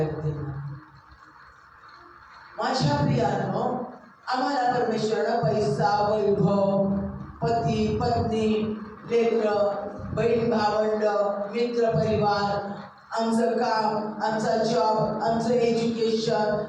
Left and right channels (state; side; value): identical; both; correlation 1.00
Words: माझ्या प्रियांनो, आम्हाला परमेश्वरानं पैसा, वैभव, पती पत्नी, लेकरं, बहीण भावंड, मित्र परिवार, आमचं काम, आमचा जॉब, आमचं एज्युकेशन,